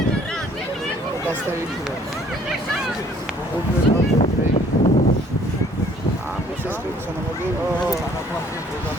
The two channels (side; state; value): both; normal; correlation 0.59